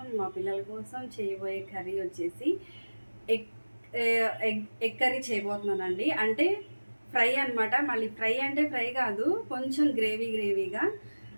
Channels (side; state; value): both; inverted; correlation -1.00